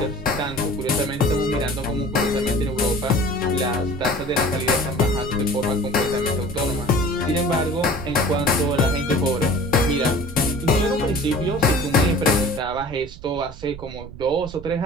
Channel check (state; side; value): noise; right; rumble, 14 dB below the sound